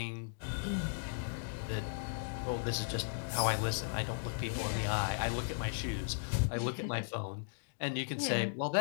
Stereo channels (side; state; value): right; silent; digital silence